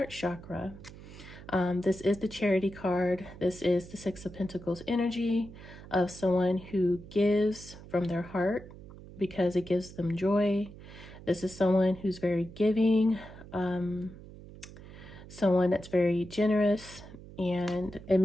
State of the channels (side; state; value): right; noise; hum, 17 dB below the sound